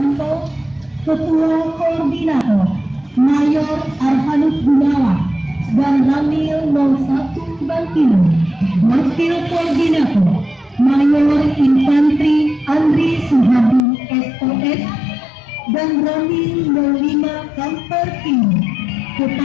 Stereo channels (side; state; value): right; drops out; at 13.8 s